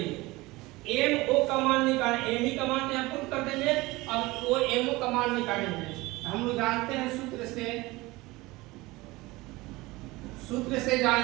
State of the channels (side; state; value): left; quieter; 21.1 dB